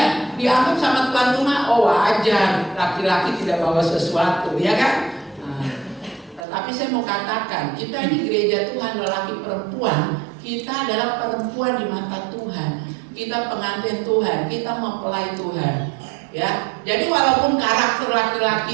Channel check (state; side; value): drops out; left; at 6.4 s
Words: dianggap sama tuan rumah, oh wajar, laki-laki tidak bawa sesuatu, ya kan? Nah, tetapi saya mau katakan, kita ini gereja Tuhan, lelaki perempuan, kita adalah perempuan di mata Tuhan. Kita pengantin Tuhan, kita mempelai Tuhan. Ya, jadi walaupun karakter